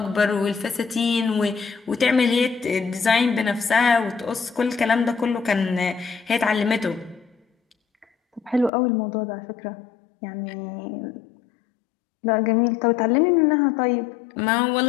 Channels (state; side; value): drops out; right; at 8.7 s